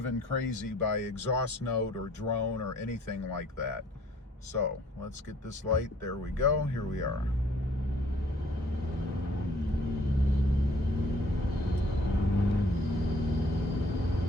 crazy by exhaust note or drone or anything like that. So let's get this light. There we go. Here we are.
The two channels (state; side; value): normal; both; correlation 0.58